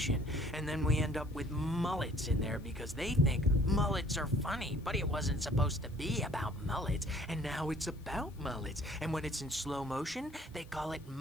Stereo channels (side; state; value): left; noise; hiss, 28 dB below the sound